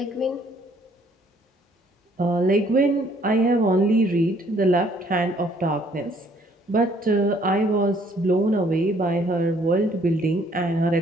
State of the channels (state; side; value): normal; both; correlation 0.63